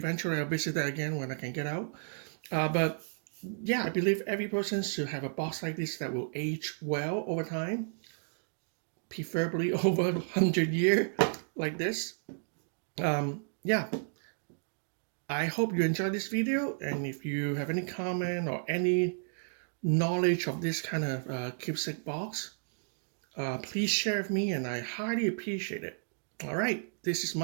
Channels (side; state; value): left; silent; digital silence